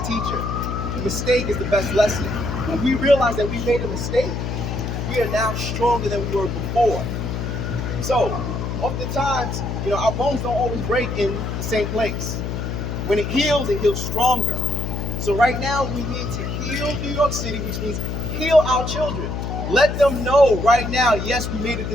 teacher. The mistake is the best lesson. When we realize that we made a mistake, we are now stronger than we were before. So, oftentimes, our bones don't always break in the same place. When it heals stronger. So right now, we need to heal New York City, which means heal our children. Let them know right now, yes, we made a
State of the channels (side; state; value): left; noise; hum, 3 dB below the sound